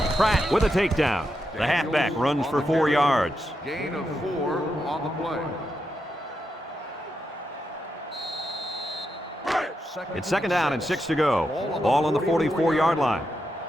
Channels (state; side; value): normal; both; correlation 0.85